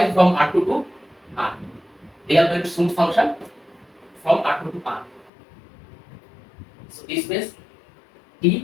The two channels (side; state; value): right; drops out; at 5.3 s